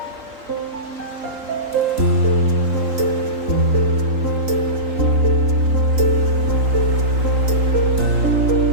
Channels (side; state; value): left; late; 3.9 ms